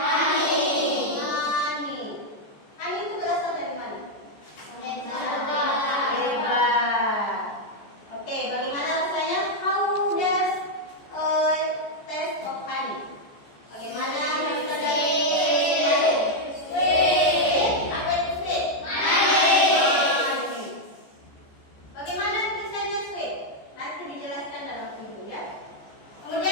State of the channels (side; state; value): right; late; 14 ms